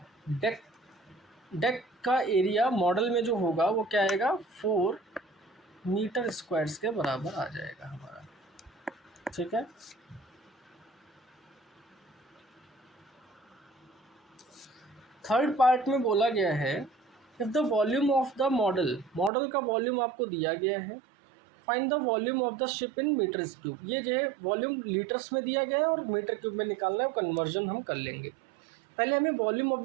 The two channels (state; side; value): drops out; left; at 19.3 s